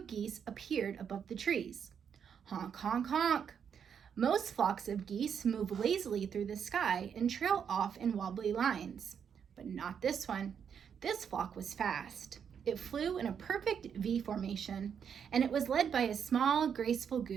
geese appeared above the trees. Honk, honk, honk. Most flocks of geese move lazily through the sky and trail off in wobbly lines, but not this one. This flock was fast. It flew in a perfect V formation, and it was led by a small, graceful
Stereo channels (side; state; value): left; quieter; 7.5 dB